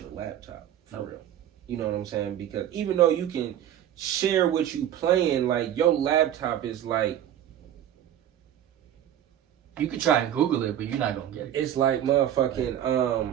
laptop for real. You know what I'm saying? Because even though you can share what you playing, like your laptop is like, You could try and Google it, but you're not gonna get it. it's like motherfucking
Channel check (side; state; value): left; quieter; 11.0 dB